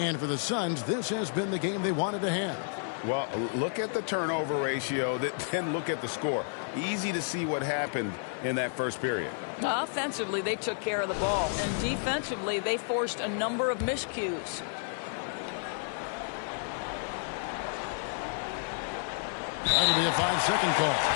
for the Suns, this has been the game they wanted to have. Well, look at the turnover ratio, then look at the score. Easy to see what happened in that first period. Offensively, they took care of the ball, and defensively, they forced a number of miscues. That'll be a 5-second call.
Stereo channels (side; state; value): right; silent; 57 dB below the other